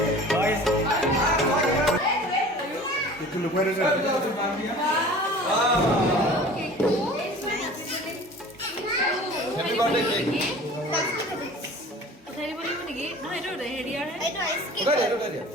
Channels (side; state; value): both; normal; correlation 0.43